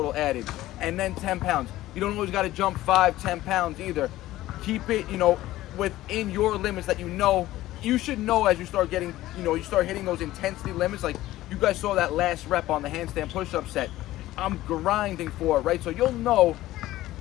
added, and then 10 pounds. You don't always gotta jump 5, 10 pounds either. Keep it, you know, within your limits that you know. You should know as you start getting, you know, you start hitting those intensity limits. Like you guys saw that last rep on the handstand push-up set. I'm grinding for it, right? So you'll know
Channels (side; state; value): right; quieter; 15.8 dB